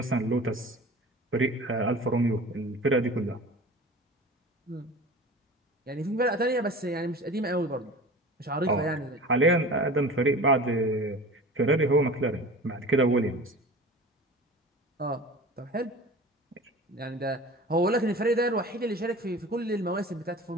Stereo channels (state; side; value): normal; both; correlation 0.37